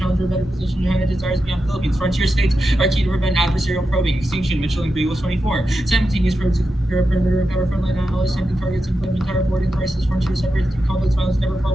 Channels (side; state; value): both; normal; correlation 0.89